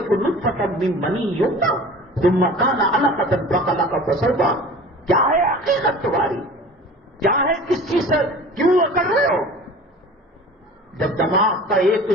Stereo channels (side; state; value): both; normal; correlation 0.41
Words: نطفۃ من منی یمنی ثم کان علقۃ فخلق فسوی، کیا ہے حقیقت تمہاری؟ کیا ہے؟ کس چیز سے کیوں کر رہے ہو؟ جب دماغ کا ایک